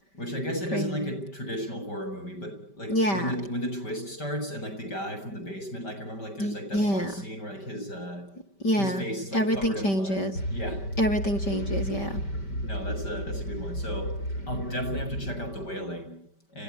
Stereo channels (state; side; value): late; right; 5.1 ms